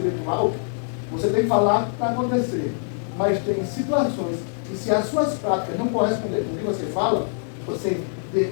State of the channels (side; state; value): right; silent; 63 dB below the other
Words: Você tem que falar para acontecer. Mas tem situações que, se as suas práticas não correspondem com o que você fala, você